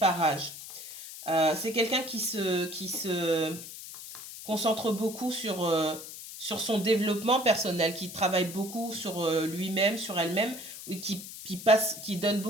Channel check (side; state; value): left; noise; hiss, 12 dB below the sound